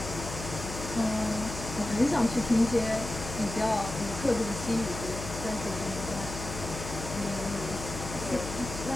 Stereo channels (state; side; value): noise; left; hum, 8 dB below the sound